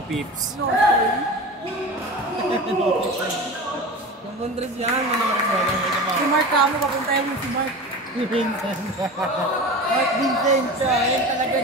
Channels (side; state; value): both; normal; correlation 0.31